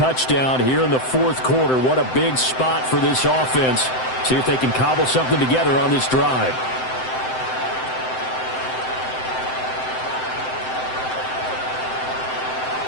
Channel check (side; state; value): right; late; 7.8 ms